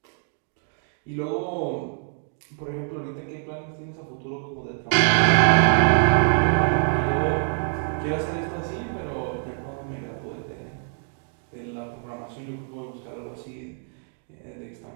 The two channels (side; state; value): left; silent; digital silence